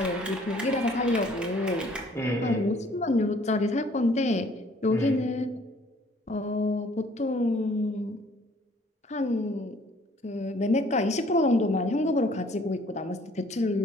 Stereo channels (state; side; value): normal; both; correlation 0.58